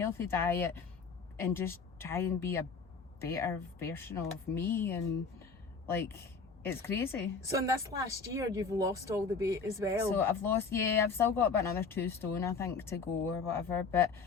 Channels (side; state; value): right; quieter; 5.0 dB